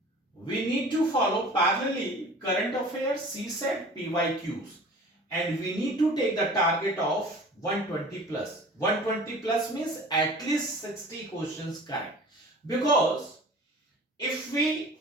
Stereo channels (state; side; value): normal; both; correlation 0.43